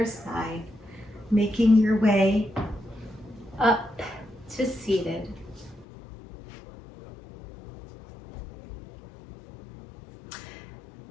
side, making your way up to seated.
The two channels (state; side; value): drops out; right; at 5.9 s